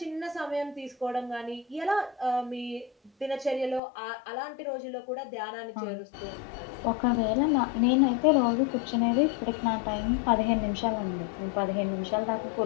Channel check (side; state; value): right; drops out; at 3.8 s